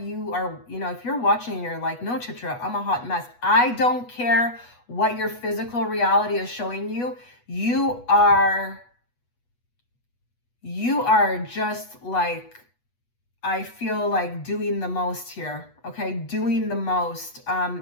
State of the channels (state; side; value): late; right; 8.2 ms